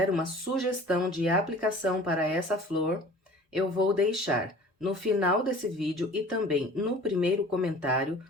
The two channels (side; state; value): both; normal; correlation 0.45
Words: uma sugestão de aplicação para essa flor, eu vou deixar no final desse vídeo e também no primeiro comentário